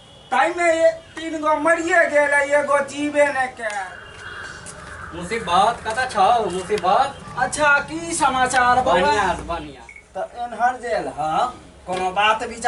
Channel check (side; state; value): both; identical; correlation 1.00